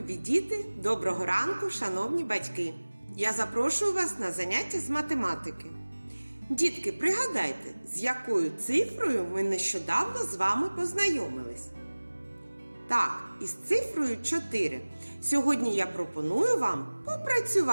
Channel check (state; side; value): inverted; both; correlation -1.00